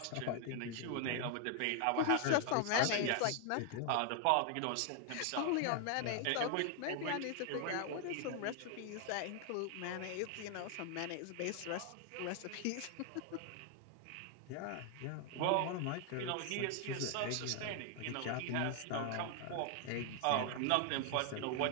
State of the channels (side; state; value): both; different; correlation 0.00